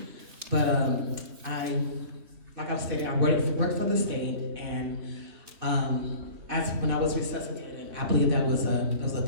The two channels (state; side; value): late; left; 2.6 ms